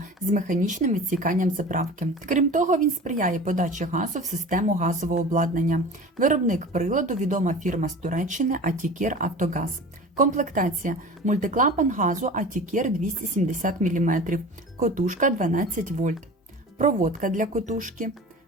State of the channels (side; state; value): both; normal; correlation 0.37